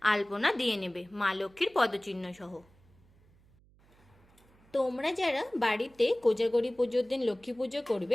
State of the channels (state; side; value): noise; right; hum, 30 dB below the sound